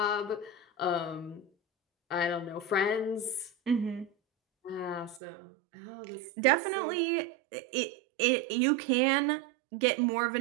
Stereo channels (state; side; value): drops out; left; at 5.2 s